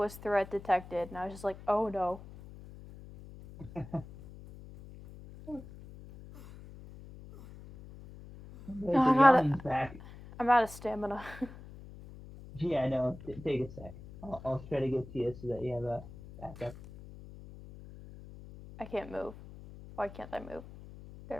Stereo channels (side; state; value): left; noise; hum, 16 dB below the sound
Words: threat detected, and I was just like, oh no. The, No, the yawning's back. I'm out of stamina. Yeah, I know. Take a sec. I'll try to get to you so that you have a backup. I can't move. Why can't I move? There